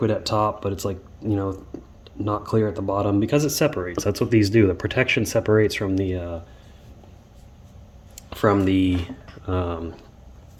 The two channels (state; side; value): identical; both; correlation 1.00